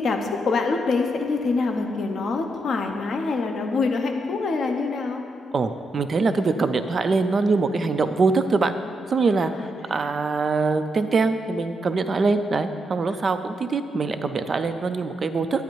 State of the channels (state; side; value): normal; both; correlation 0.82